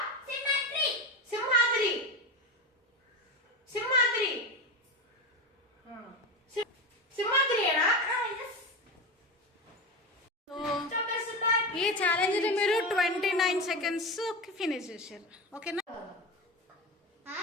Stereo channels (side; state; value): both; normal; correlation 0.21